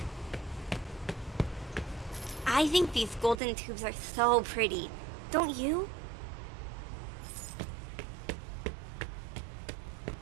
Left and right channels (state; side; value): drops out; left; at 3.4 s